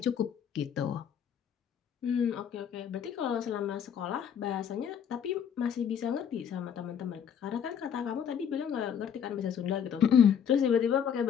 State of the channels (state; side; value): quieter; right; 8.2 dB